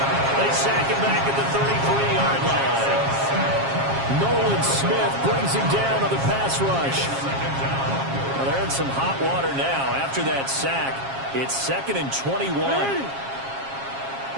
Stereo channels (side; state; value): left; late; 7.4 ms